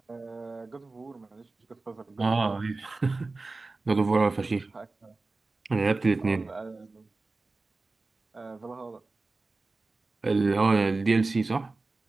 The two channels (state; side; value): quieter; left; 3.5 dB